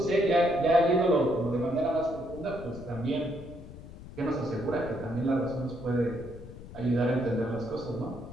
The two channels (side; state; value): left; noise; rumble, 15 dB below the sound